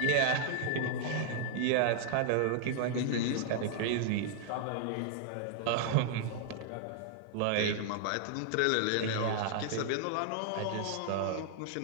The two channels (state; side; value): different; both; correlation -0.01